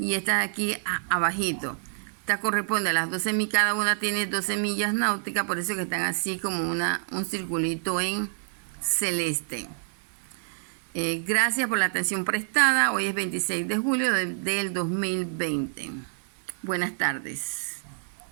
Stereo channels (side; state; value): left; silent; 58 dB below the other